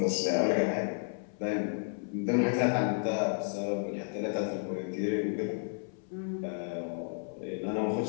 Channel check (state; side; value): silent; right; 56 dB below the other